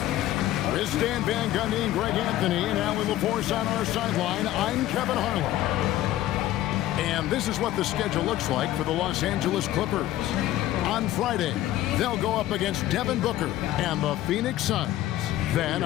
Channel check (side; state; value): right; quieter; 14.1 dB